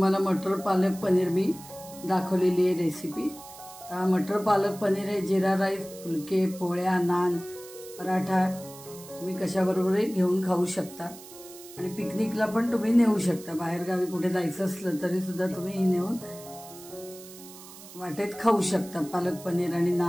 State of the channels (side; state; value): right; noise; hiss, 17 dB below the sound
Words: मटर पालक पनीर मी दाखवलेली आहे रेसिपी। मटर पालक पनीर हे जिरा राईस, फुलके, पोळ्या, नान, पराठा तुम्ही कशाबरोबरही घेऊन खाऊ शकता। आणि पिकनिकला पण तुम्ही नेऊ शकता। बाहेर गावी कुठे जायचं असलं तरी सुद्धा तुम्ही नेऊन वाटेत खाऊ शकता। पालक पनीर आणि